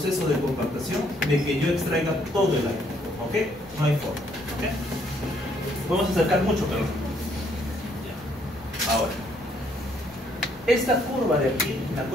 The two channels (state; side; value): normal; both; correlation 0.68